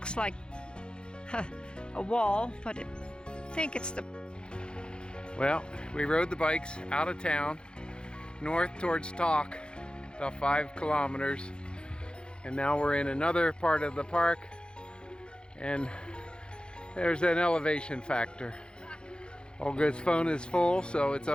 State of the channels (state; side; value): late; right; 0.051 ms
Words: like a wall, but I think it's the... Well, we rode the bikes out of town, north towards Talk, about 5 kilometers, and now we're in another part of the park, and there's an elevation factor. Olga's phone is full, so it's